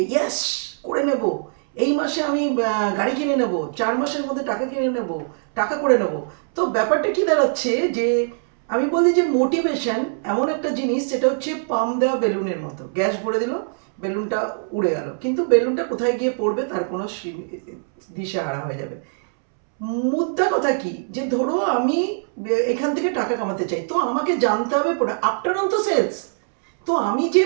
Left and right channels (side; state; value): left; silent; 64 dB below the other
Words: ইয়েস করে নেব, এই মাসে আমি গাড়ি কিনে নেব, 4 মাসের মধ্যে টাকা কিনে নেব, টাকা করে নেব। তো ব্যাপারটা কি দাঁড়াচ্ছে যে আমি বলি যে মোটিভেশন এমন একটা জিনিস, সেটা হচ্ছে পাম দেওয়া বেলুনের মতো। গ্যাস ভরে দিল, বেলুনটা উড়ে গেল, কিন্তু বেলুনটা কোথায় গিয়ে পড়বে তার কোনো দিশেহারা হয়ে যাবে। মুদ্রা কথা কি, যে ধরো আমি এখান থেকে টাকা কামাতে চাই, তো আমাকে জানতে হবে আফটার অল তো সেলস। তো আমি যে